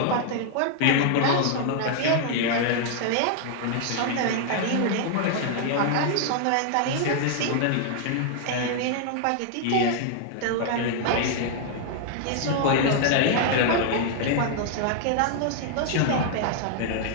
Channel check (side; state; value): both; different; correlation 0.00